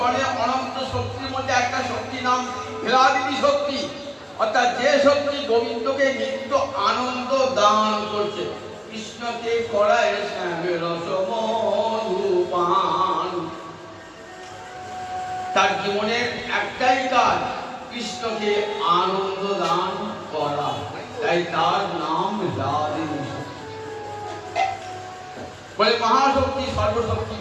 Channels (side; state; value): both; identical; correlation 1.00